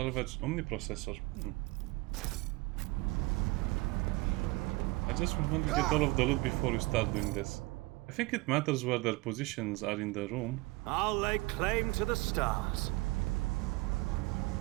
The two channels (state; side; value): quieter; left; 23.2 dB